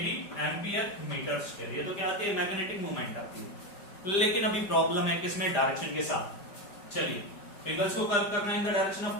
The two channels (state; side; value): late; right; 4.9 ms